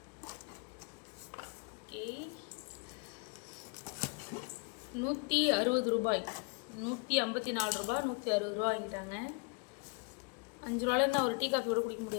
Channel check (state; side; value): quieter; right; 32.5 dB